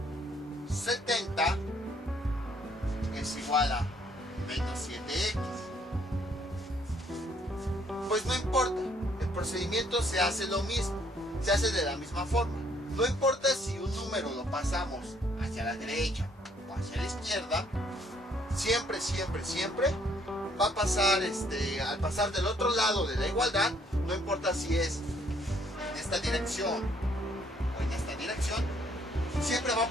70 es igual a menos 7x. Pues no importa, el procedimiento se hace lo mismo, se hace de la misma forma. No importa si un número lo pasamos hacia la derecha o hacia la izquierda, siempre va a pasar, al pasar del otro lado de la igualdad, no importa si es en esta dirección o en esta dirección, siempre va a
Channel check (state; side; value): normal; both; correlation 0.65